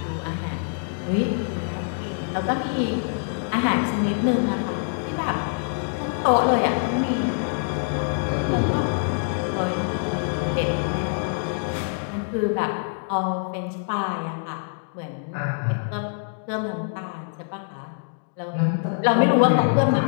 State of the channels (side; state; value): right; silent; digital silence